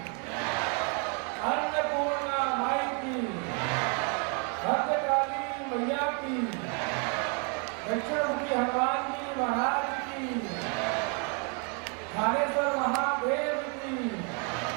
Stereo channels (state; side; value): quieter; left; 37.6 dB